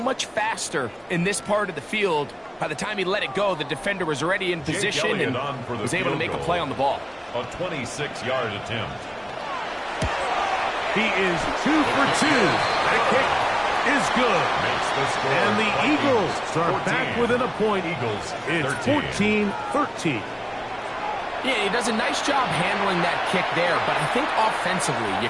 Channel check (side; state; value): both; identical; correlation 1.00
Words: much faster in this part of the field. By the time he let it go, the defender was already in position and was able to make a play on the ball. A 26-yard attempt. He is 2 for 2. That kick is good. And the Eagles are back within a point. It's 14-13. Yeah, he does a nice job handling that kick there, but I think offensively, you